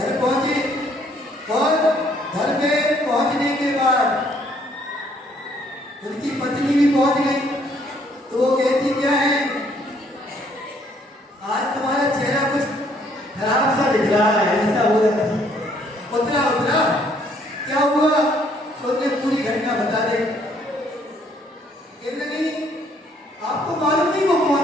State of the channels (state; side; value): normal; both; correlation 0.65